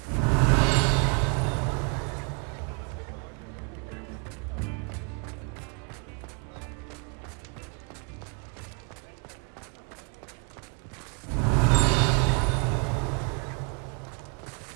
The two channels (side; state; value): left; quieter; 34.5 dB